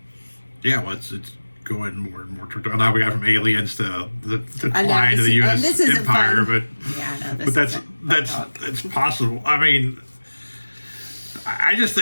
Yeah, well, it's going more and more. Now we got from aliens to decline to the U.S. empire, but yeah, but that's possible. I mean, I just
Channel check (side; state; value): both; inverted; correlation -1.00